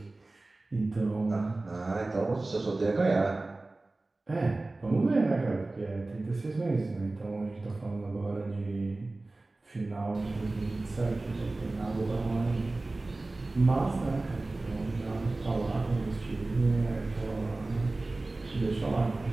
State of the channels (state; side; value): quieter; left; 3.1 dB